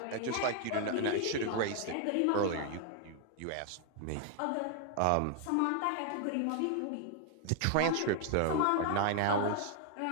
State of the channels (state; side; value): different; both; correlation 0.00